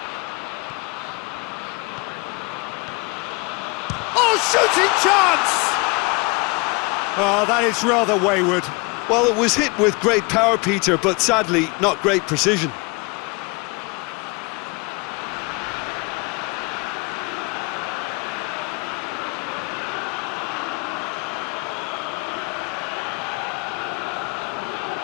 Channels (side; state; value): right; quieter; 28.7 dB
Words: Oh, shooting chance! Oh, that is rather wayward. Well, it was hit with great power, Peter, but sadly, not great precision.